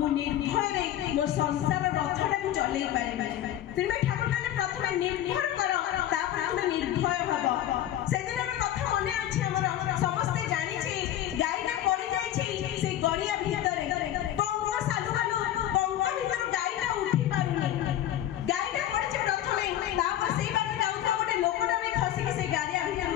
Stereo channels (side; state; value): right; quieter; 12.2 dB